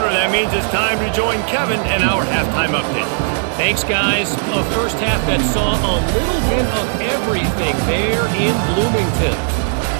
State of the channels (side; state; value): left; silent; digital silence